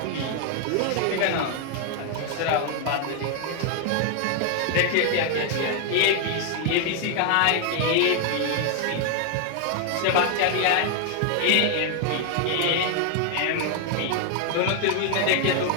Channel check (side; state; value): both; different; correlation 0.00